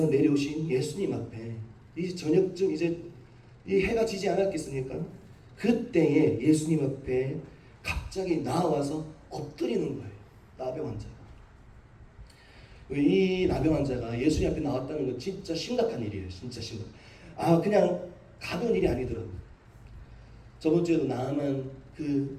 내려오신 예수님 앞에 이제 저녁쯤 이제 이 해가 지지 않았겠습니까? 그때에 예수님 앞에 갑자기 나와서 엎드리는 거예요. 나병 환자가. 이 나병 환자가 예수님 앞에 나왔다는 건 진짜 심각한 일이에요. 진짜 심각. 그냥 가벼운 일이 아니더라고요. 저번 주에도 나만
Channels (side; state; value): both; identical; correlation 1.00